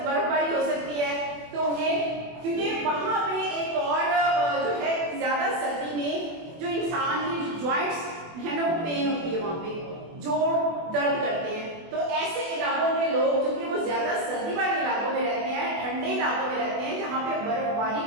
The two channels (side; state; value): left; late; 24 ms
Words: हो सकती है तो उन्हें, क्योंकि वहां पे एक और जो है ज्यादा सर्दी में जो इंसान की जॉइंट्स है ना वो पेन होती है, वहां पे जोड़ दर्द करते हैं। तो ऐसे इलाकों में लोग जो कि वो ज्यादा सर्दी वाले इलाकों में रहते हैं, ठंडे इलाकों में रहते हैं जहाँ पे बर्फबारी